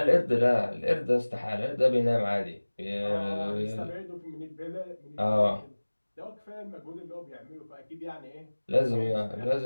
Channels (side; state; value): both; inverted; correlation -1.00